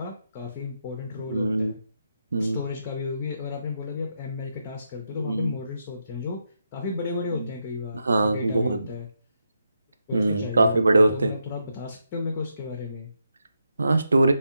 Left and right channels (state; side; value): inverted; both; correlation -0.83